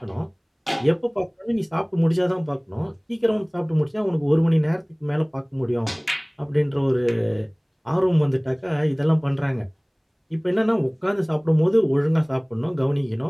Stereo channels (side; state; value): both; identical; correlation 1.00